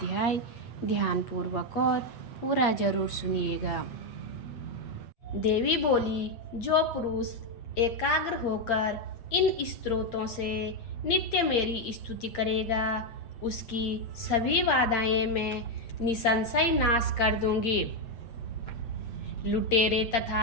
ध्यानपूर्वक और पूरा जरूर सुनिएगा। देवी बोली, जो पुरुष एकाग्र होकर इन स्तोत्रों से नित्य मेरी स्तुति करेगा, उसकी सभी बाधाएं मैं निसंशय नाश कर दूंगी। लुटेरे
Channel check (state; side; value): late; right; 8.6 ms